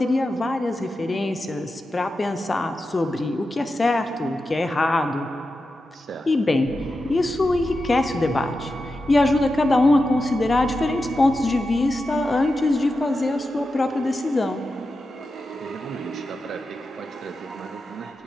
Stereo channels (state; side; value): normal; both; correlation 0.90